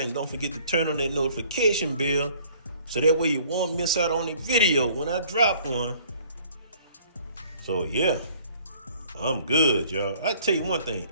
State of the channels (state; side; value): inverted; both; correlation -0.56